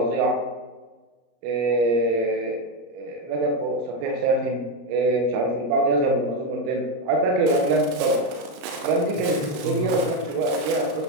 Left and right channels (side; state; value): left; late; 34 ms